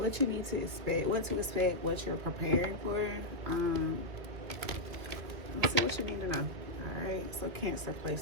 you need to expect, what you're preparing for. Let's see what you need to know. All right, so Cancer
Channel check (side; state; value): left; late; 2.5 ms